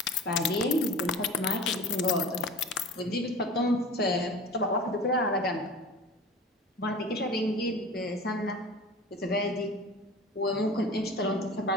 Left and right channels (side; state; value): both; normal; correlation 0.38